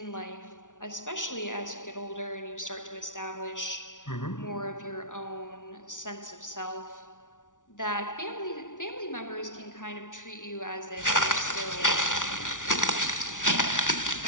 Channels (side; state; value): right; late; 0.87 ms